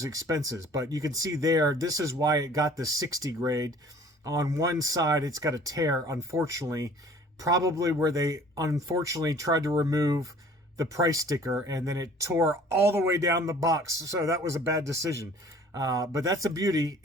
expenses. But you can see there, this is why it got the 60 grade. On one side, it's got a tear, unfortunately, probably where they unfortunately tried to remove the price sticker and then it tore all the way down the box. So that was a bad decision. But that's a beauty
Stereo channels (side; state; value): both; normal; correlation 0.51